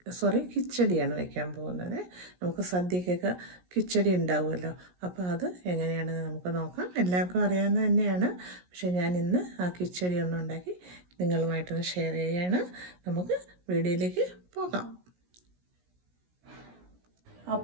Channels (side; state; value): left; late; 17 ms